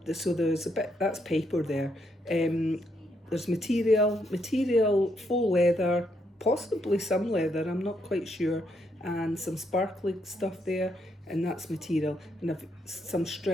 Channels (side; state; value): both; normal; correlation 0.76